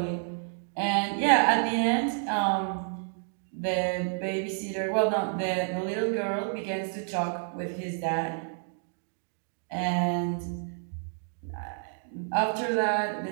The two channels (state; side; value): silent; left; 58 dB below the other